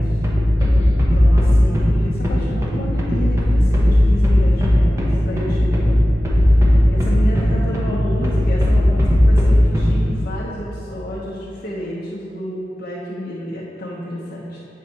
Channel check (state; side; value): normal; both; correlation 0.96